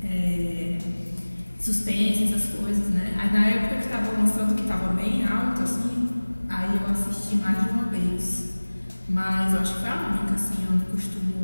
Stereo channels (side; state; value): both; inverted; correlation -1.00